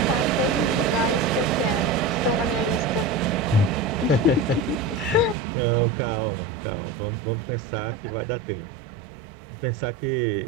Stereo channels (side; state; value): left; drops out; at 5.4 s